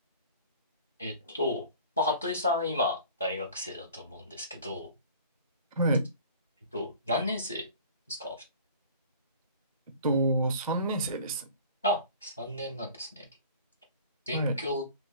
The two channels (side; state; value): both; inverted; correlation -0.46